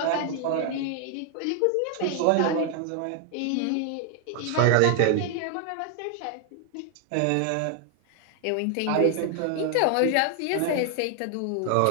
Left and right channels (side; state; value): both; different; correlation 0.00